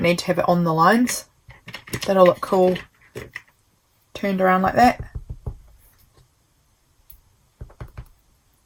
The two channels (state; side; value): identical; both; correlation 1.00